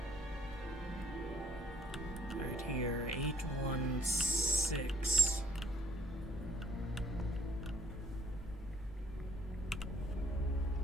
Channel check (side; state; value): both; normal; correlation 0.64